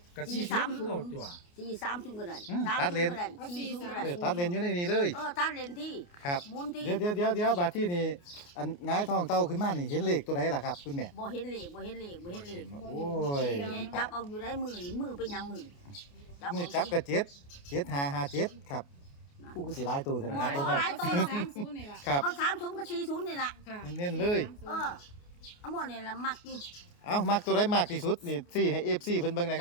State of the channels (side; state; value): right; late; 28 ms